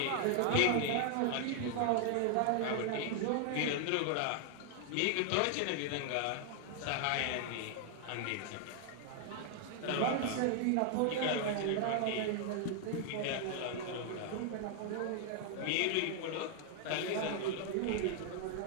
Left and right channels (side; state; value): both; different; correlation 0.00